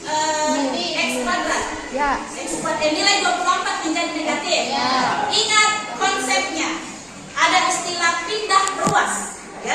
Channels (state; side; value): identical; both; correlation 1.00